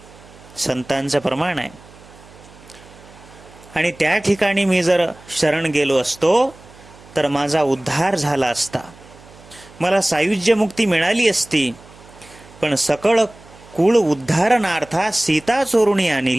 संतांचं प्रमाण आहे. आणि त्या ठिकाणी मी जर शरण गेलो असतो तर माझा उद्धार झाला असता, मला सायुज्य मुक्ती मिळाली असती. पण सकळ कुळ उद्धारणार्था सीता चोरुणी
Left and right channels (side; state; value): right; noise; hum, 23 dB below the sound